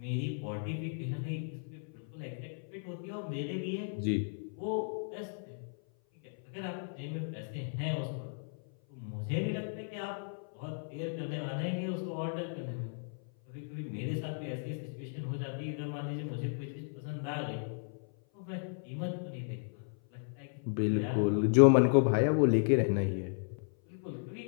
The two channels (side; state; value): right; silent; 55 dB below the other